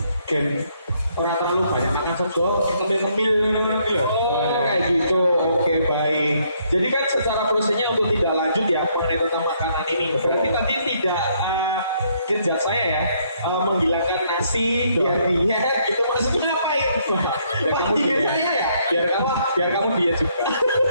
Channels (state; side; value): inverted; both; correlation -0.70